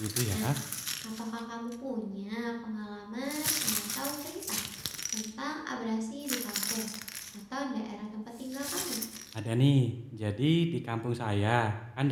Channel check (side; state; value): both; identical; correlation 1.00